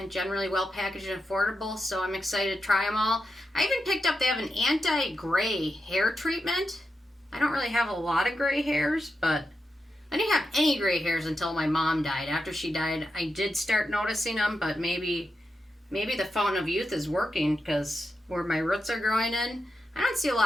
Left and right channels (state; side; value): normal; both; correlation 0.87